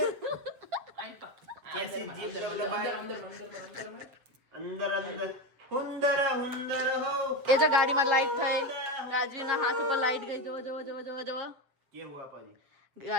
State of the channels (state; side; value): late; left; 7.6 ms